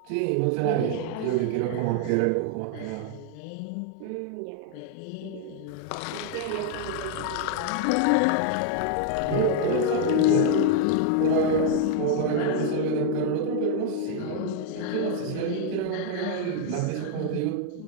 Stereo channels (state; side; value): different; both; correlation 0.00